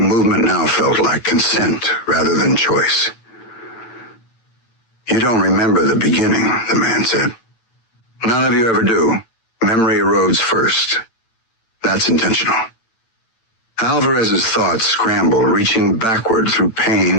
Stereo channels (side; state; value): right; late; 8.9 ms